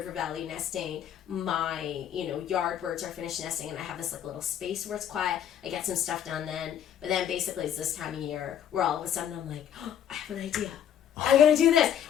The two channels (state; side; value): quieter; right; 9.7 dB